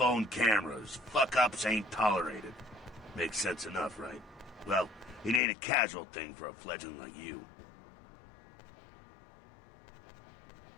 cameras. Fuck-ups ain't tolerated. Makes sense enough, right? Well, it ain't a casual thing for a fledgling like you.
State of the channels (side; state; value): right; drops out; at 5.4 s